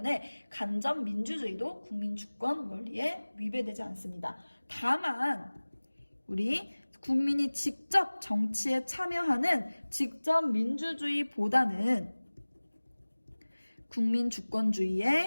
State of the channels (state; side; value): inverted; both; correlation -1.00